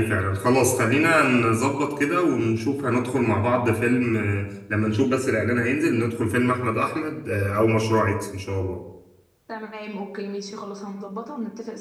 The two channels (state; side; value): identical; both; correlation 1.00